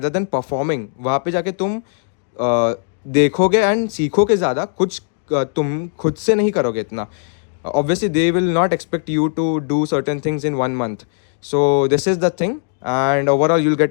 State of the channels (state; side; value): silent; right; 67 dB below the other